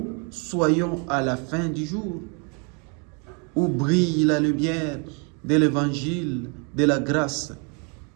soyons à la fin du jour, où brille la lumière de l'évangile de la grâce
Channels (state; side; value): quieter; left; 35.3 dB